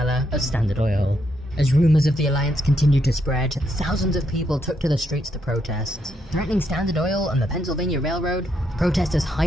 of Standard Oil. As rumors of the alliance continued to spread, thousands of people took to the streets to protest. Threatening Standard Oil and the Pennsylvania Railroad, protesters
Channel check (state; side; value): normal; both; correlation 0.77